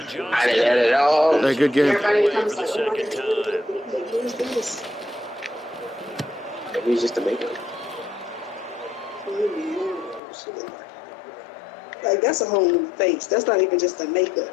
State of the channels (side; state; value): right; drops out; at 10.2 s